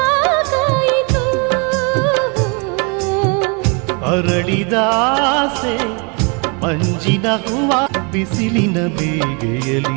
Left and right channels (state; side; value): quieter; left; 34.0 dB